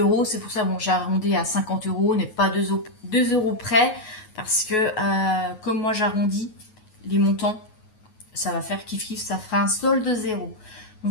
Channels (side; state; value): right; late; 9.4 ms